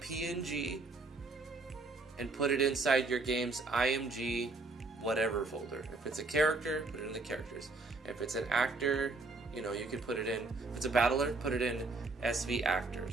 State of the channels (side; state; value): left; quieter; 3.4 dB